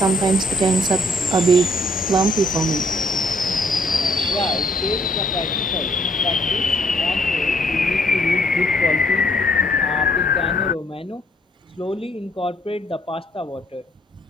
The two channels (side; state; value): both; normal; correlation 0.67